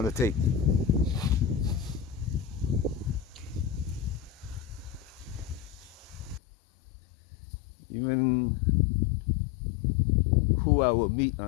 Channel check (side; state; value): right; drops out; at 6.4 s